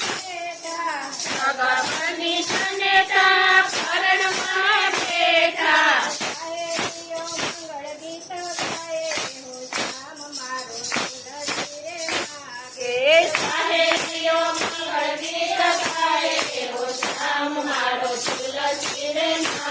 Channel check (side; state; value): both; identical; correlation 1.00